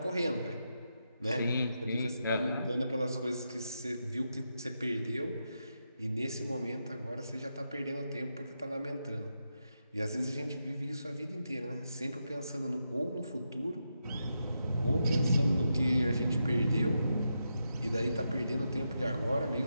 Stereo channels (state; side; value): inverted; both; correlation -0.85